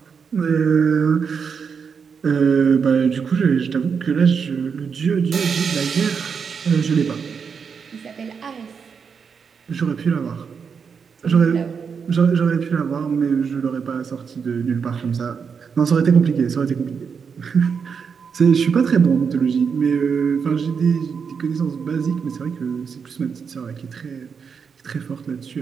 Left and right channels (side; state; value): left; quieter; 6.2 dB